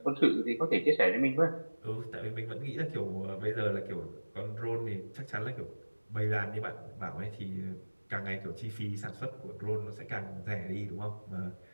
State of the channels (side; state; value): both; inverted; correlation -1.00